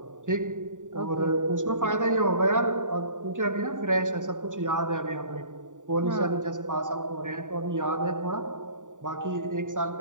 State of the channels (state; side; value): late; left; 0.87 ms